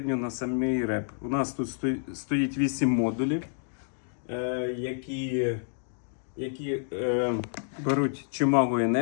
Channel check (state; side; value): silent; right; digital silence